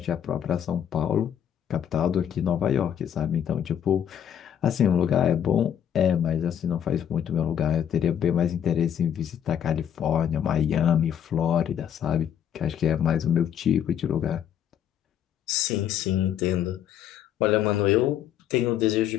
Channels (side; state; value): right; quieter; 9.5 dB